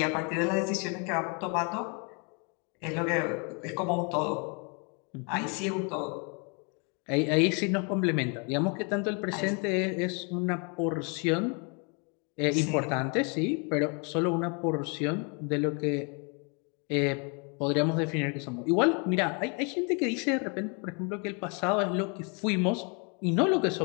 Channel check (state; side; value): quieter; right; 35.0 dB